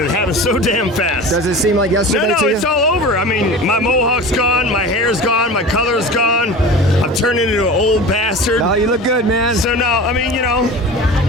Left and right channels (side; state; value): both; normal; correlation 0.35